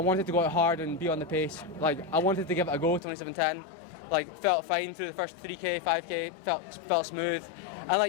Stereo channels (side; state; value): right; drops out; at 3.0 s